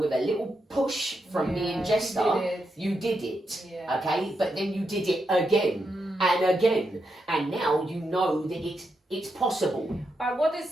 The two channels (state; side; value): normal; both; correlation 0.84